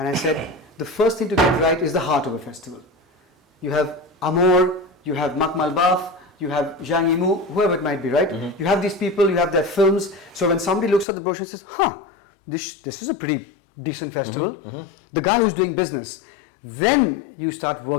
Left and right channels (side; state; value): right; drops out; at 11.1 s